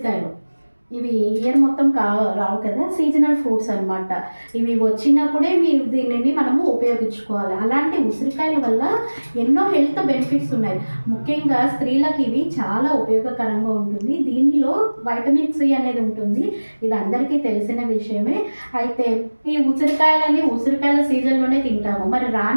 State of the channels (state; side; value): inverted; both; correlation -1.00